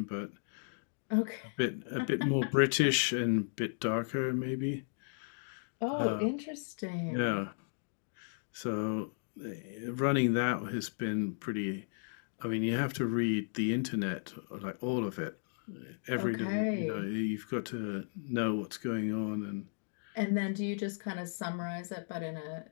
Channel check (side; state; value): right; silent; digital silence